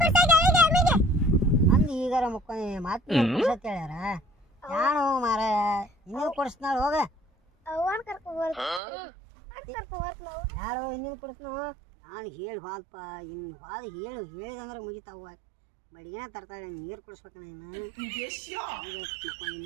ಅಂದ್ ಈಗಾರ ಮುಕ್ಕೊಂಡಿ ಮಾತು ಕೊಡ್ಸತ್ ಹೇಳ್ಯಾರ ಯಾನು ಮಾರ ಇನ್ನೂ ಕೊಡಿಸ್ನಾಳ ಹೋಗ ಯಾರು ಇನ್ನೇನು ಕೊಡಿಸ್ನು ನಾನು ಹೇಳಿ ಬಾಲ್ಪ ಇನ್ನು ಬಾದ ಹೇಳಿದಂದ್ರೆ ಮುಗಿತಾವ ಬಡಿಗೆನ ತರ್ತಾಳೆ ನೀರು ಕುಡಿಸ್ಬೇಕಣ್ಣ ಇನ್ನು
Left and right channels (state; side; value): drops out; left; at 8.8 s